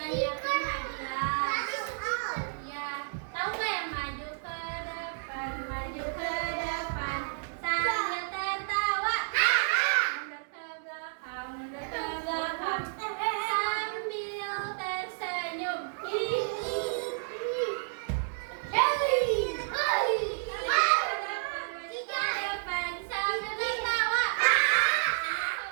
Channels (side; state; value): left; silent; digital silence